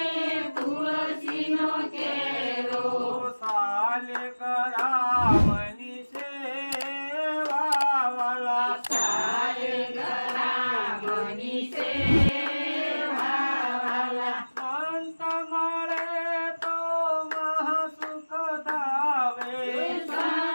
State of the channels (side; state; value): both; inverted; correlation -1.00